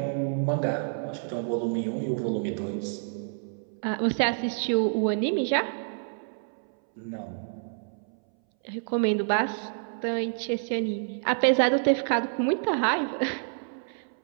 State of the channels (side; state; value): left; silent; 59 dB below the other